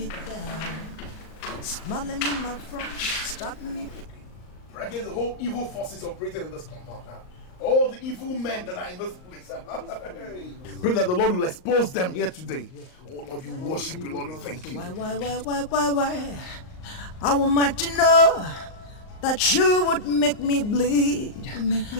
down. Smiling in my front, stopping me. Pray against the whole evil forces operating in this compound. All the evil men that are in this place. Pray that the Lord will expose them here today. Oh Lord, you worship you, Lord, we thank you. Why? I want to know that you would make me bleed.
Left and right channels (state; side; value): late; right; 38 ms